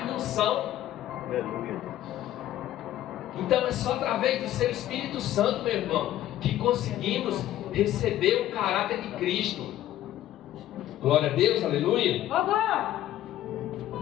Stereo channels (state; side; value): quieter; right; 13.2 dB